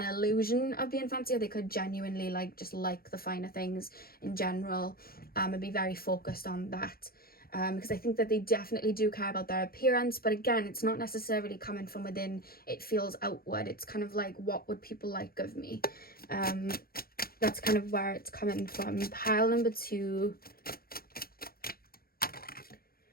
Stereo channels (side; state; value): right; late; 0.44 ms